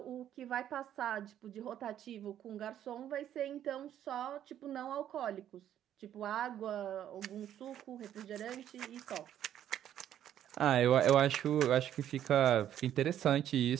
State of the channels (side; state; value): left; quieter; 10.8 dB